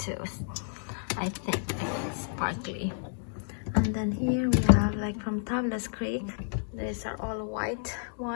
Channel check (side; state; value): right; silent; 57 dB below the other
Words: I think it's sparkly. And then here we have like from Tablas Creek. These are all white